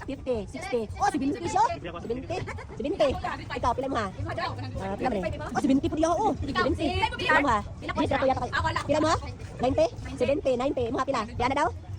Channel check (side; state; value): both; identical; correlation 1.00